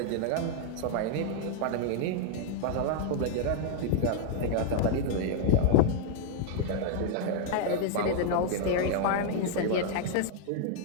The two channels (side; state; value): both; different; correlation 0.00